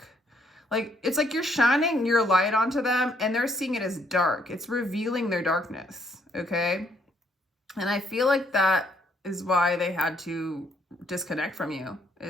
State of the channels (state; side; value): normal; both; correlation 0.69